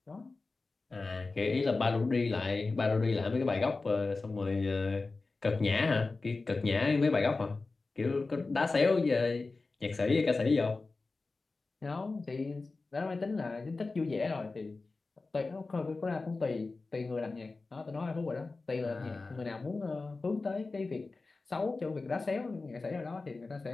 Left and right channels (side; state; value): right; quieter; 3.7 dB